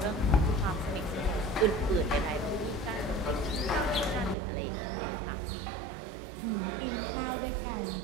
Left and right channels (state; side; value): drops out; left; at 4.4 s